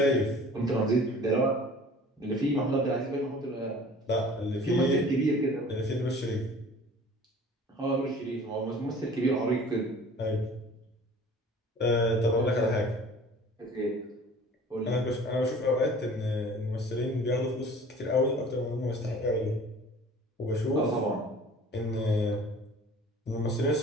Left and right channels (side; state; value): both; normal; correlation 0.47